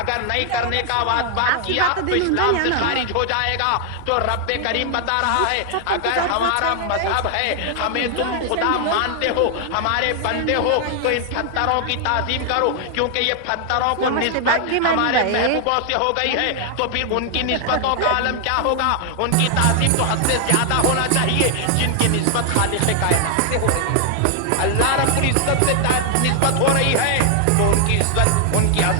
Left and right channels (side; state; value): both; different; correlation 0.00